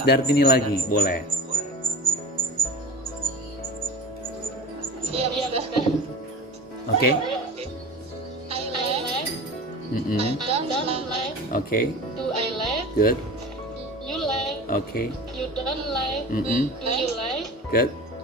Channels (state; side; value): normal; both; correlation 0.35